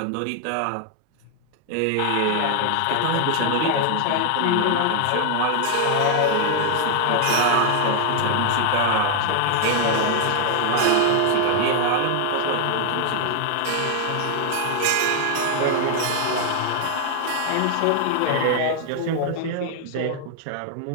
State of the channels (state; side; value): different; both; correlation 0.00